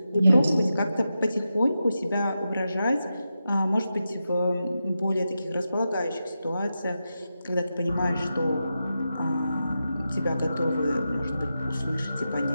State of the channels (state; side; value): inverted; both; correlation -0.89